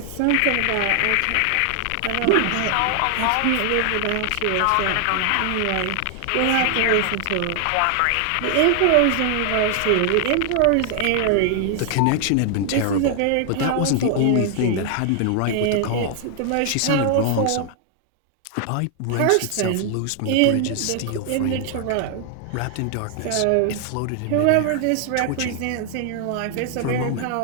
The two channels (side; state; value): both; different; correlation 0.00